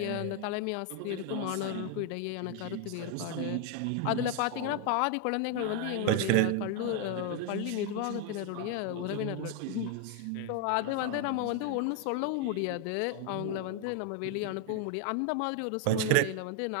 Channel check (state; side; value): different; both; correlation 0.01